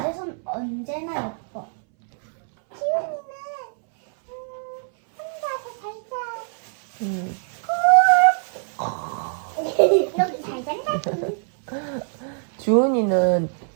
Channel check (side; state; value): left; silent; 63 dB below the other